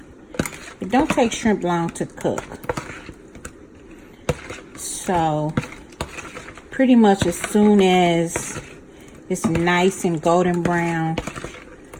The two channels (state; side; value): identical; both; correlation 1.00